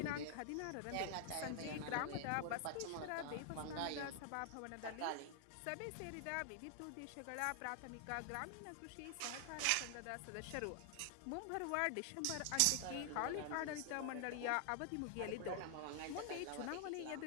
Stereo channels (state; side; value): different; both; correlation 0.00